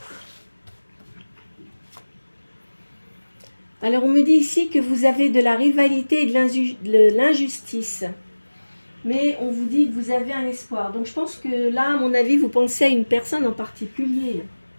Alors on me dit ici que vous avez de la rivalité et de l'injustice. Mais on vous dit que vous avez un espoir. Donc je pense que là, à mon avis, vous pensez à une personne en particulier.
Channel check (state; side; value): inverted; both; correlation -1.00